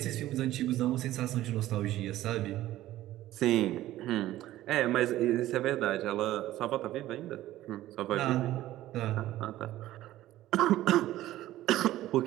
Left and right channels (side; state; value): left; quieter; 14.8 dB